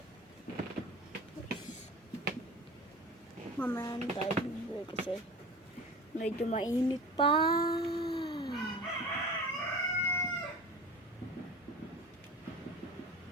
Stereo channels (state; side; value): normal; both; correlation 0.36